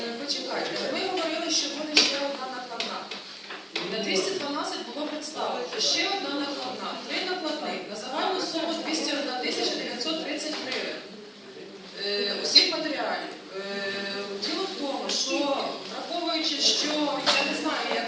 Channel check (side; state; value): both; identical; correlation 1.00